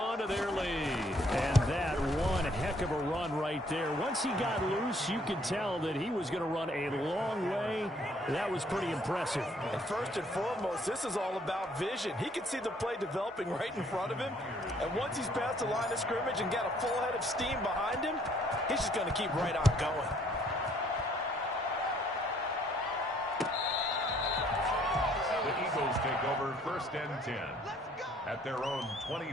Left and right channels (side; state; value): both; normal; correlation 0.63